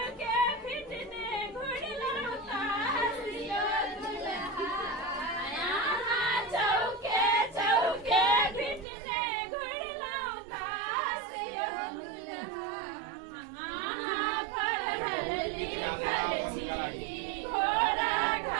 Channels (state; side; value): drops out; left; at 8.8 s